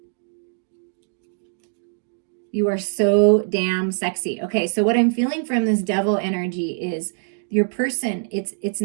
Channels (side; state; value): left; silent; digital silence